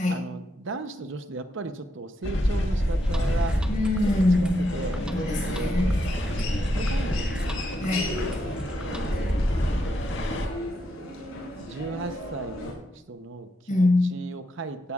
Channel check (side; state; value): both; normal; correlation 0.81